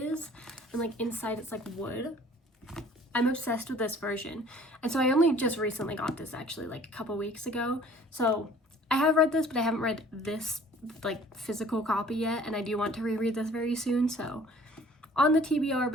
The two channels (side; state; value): both; normal; correlation 0.51